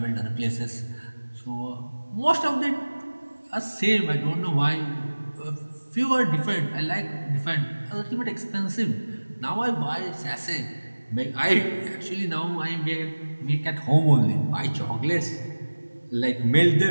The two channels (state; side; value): inverted; both; correlation -1.00